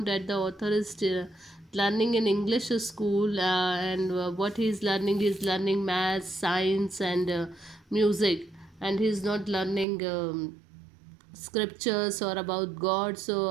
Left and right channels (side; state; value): left; drops out; at 9.9 s